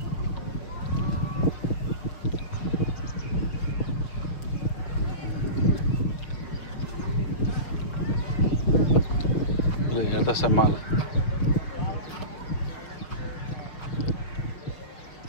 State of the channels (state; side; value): late; right; 5.6 ms